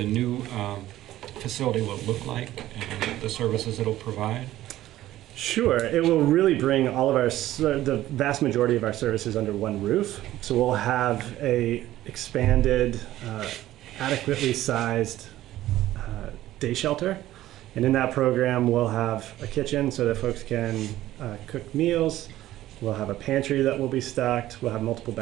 new facility will look like and the services it'll provide? Sure. It will really bring all of the vast majority of our services under one roof. So we'll have a expanded, adequately sized day shelter. And in that program, we'll have a kitchen so that folks can cook meals. We'll have a pantry that will be stocked. We'll have multiple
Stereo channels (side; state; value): left; quieter; 14.7 dB